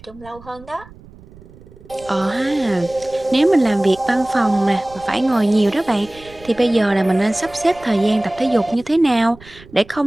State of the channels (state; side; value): noise; right; rumble, 22 dB below the sound